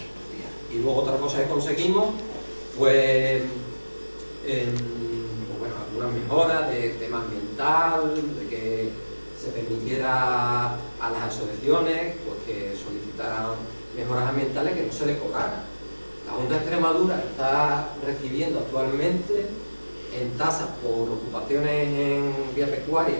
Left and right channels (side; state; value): both; inverted; correlation -1.00